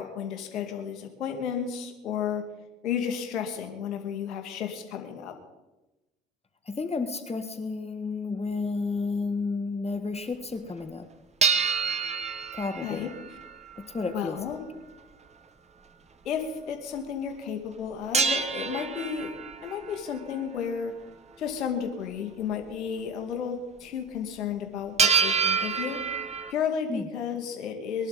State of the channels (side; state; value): both; normal; correlation 0.33